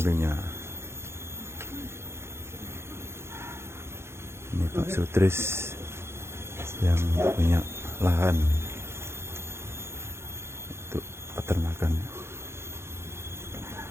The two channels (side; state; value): left; late; 0.12 ms